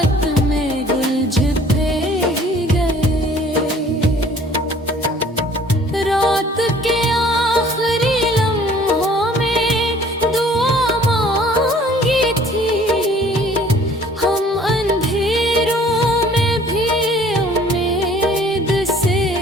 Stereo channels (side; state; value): both; normal; correlation 0.54